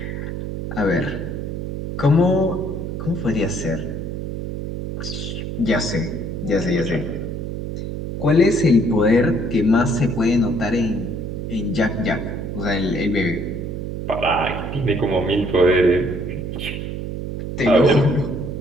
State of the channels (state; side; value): noise; right; hum, 5 dB below the sound